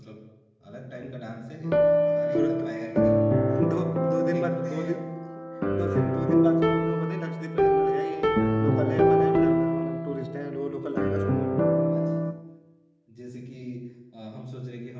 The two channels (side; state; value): both; identical; correlation 1.00